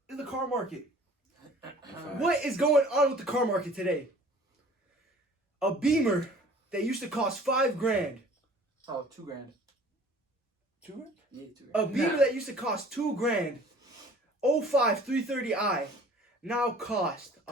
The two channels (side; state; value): both; normal; correlation 0.50